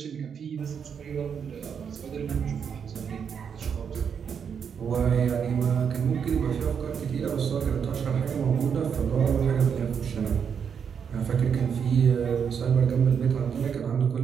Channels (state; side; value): quieter; left; 7.1 dB